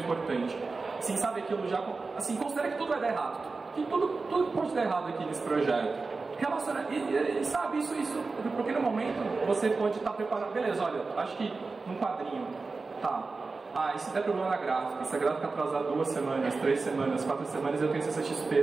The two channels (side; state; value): left; quieter; 4.0 dB